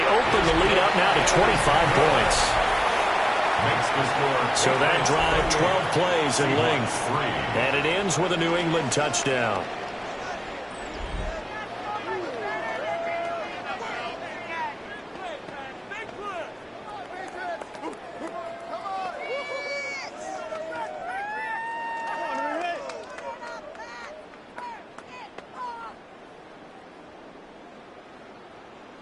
open the lead up now to 25 points. So that drive, 12 plays in length. And it ends with a New England touchdown.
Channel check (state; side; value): identical; both; correlation 1.00